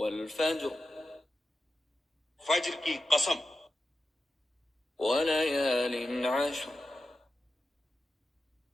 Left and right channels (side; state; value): both; normal; correlation 0.91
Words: فجر کی قسم، ولیال عشر